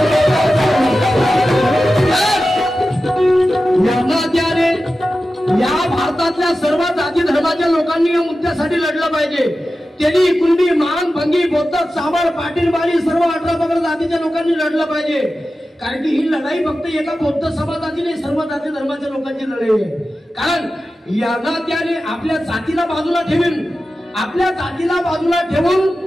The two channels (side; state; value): both; normal; correlation 0.93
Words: समाजातल्या सर्व जाती धर्माच्या लोकांनी या मुद्द्यासाठी लढलं पाहिजे. तेली, कुणबी, मान, भंगी, बौद्ध, चावड, पाटील, बाली सर्व 18 पगड जातीच्या लोकांनी लढलं पाहिजे. कारण की ही लढाई फक्त एका बौद्ध समाजाची नाही, सर्व जाती धर्माच्या लोकांची लढाई आहे. कारण यांना त्याने आपल्या जातीला बाजूला ठेवून